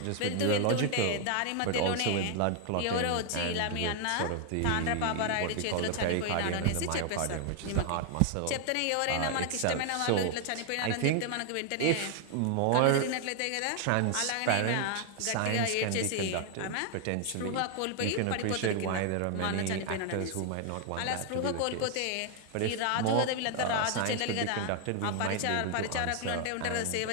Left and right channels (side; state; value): both; different; correlation 0.00